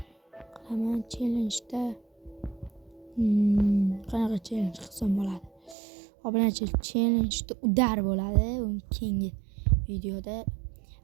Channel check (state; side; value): drops out; left; at 5.8 s